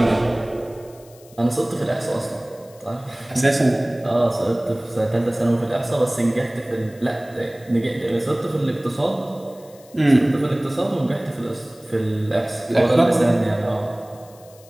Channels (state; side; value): noise; left; hiss, 25 dB below the sound